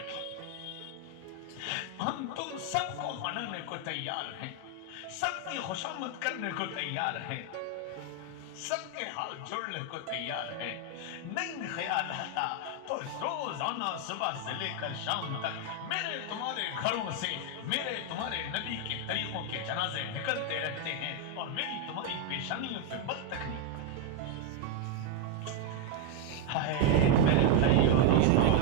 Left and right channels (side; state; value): both; different; correlation 0.01